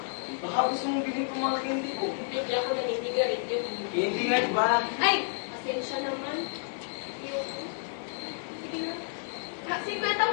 Baka gusto mong bilhin ko mga candy ko. Hindi ako naninigarit yun. Candy nga, di ba? Ay, pasensya naman. Sige na. Sikwenta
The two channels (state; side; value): silent; right; digital silence